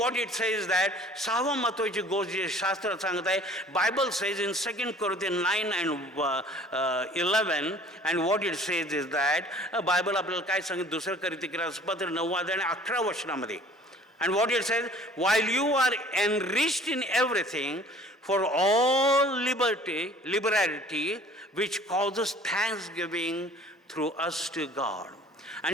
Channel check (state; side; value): normal; both; correlation 0.51